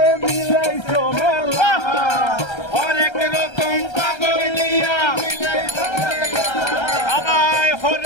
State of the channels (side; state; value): right; late; 1.3 ms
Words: মিলাইছো মেলা অনেক রকম পাগল দিয়া আবার